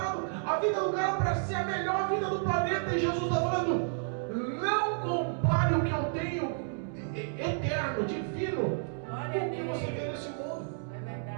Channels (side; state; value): left; silent; digital silence